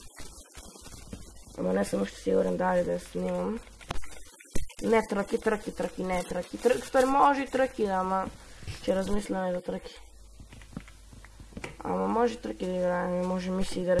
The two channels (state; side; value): identical; both; correlation 1.00